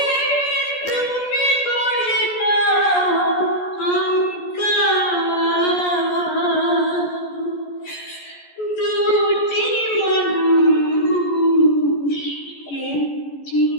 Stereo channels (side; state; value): right; late; 14 ms